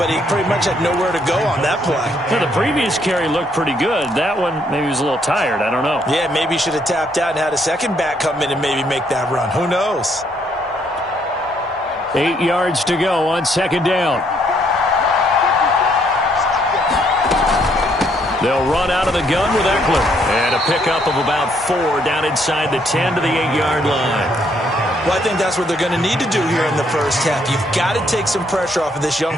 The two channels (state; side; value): normal; both; correlation 0.70